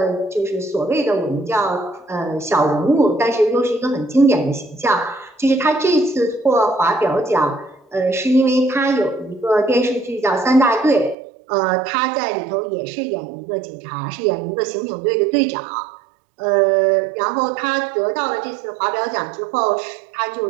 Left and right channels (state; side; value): drops out; left; at 11.2 s